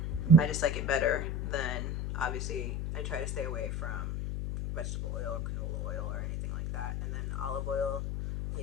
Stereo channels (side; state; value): left; noise; hum, 2 dB below the sound